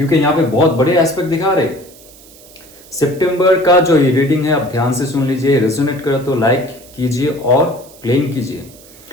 यहाँ पे बहुत बड़े एस्पेक्ट दिखा रहे। सितंबर का जो ये रीडिंग है आप ध्यान से सुन लीजिए, रेजोनेट करे तो लाइक कीजिए और क्लेम कीजिए,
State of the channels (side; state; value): right; noise; hiss, 23 dB below the sound